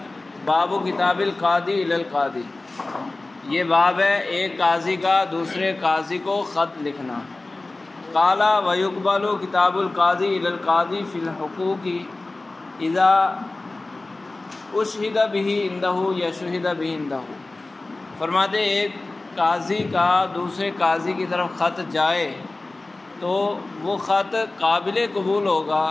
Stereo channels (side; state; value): right; quieter; 3.1 dB